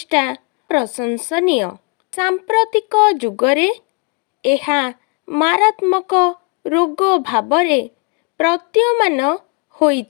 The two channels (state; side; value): quieter; right; 32.4 dB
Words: प्रशंसनीय। सांप्रतिक जुगरे एहा मारात्मक रोग भावरे प्रतीयमान